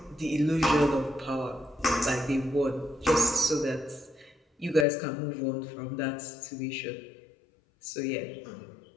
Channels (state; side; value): drops out; right; at 4.9 s